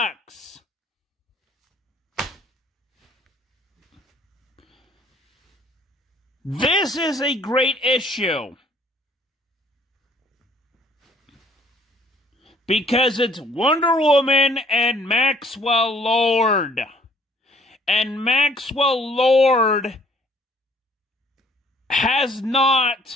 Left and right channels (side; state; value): both; normal; correlation 0.60